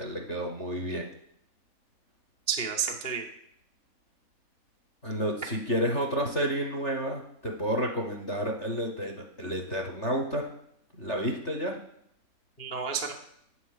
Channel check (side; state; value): right; late; 2.9 ms